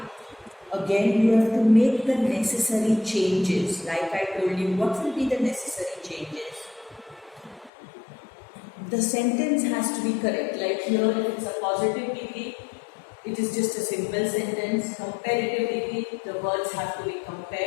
again you have to make the necessary changes. Like I told you, what will be the necessary changes? the sentence has to be correct. Like here, if it's a positive degree, it is just a simple sentence. Comparative degree, the words have to be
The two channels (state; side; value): drops out; right; at 7.7 s